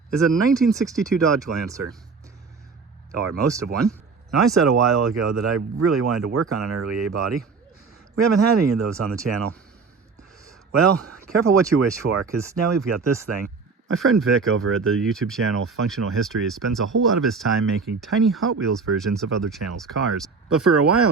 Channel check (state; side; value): quieter; left; 4.8 dB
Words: is a 1962 Dodge Lancer. Or most of one. Now, I said a while ago that I really wanted to work on an early A body. We haven't had any of those on the channel. Well, careful what you wish for, because now we've got this thing. My friend Vic over at the YouTube channel Functional Histories spends a whole lot of his time making tiny Hot Wheels versions of other channels' cars. But for a